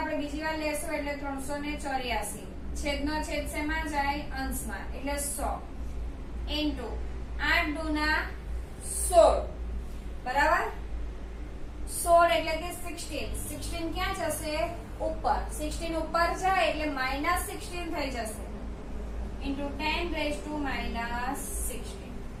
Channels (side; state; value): both; identical; correlation 1.00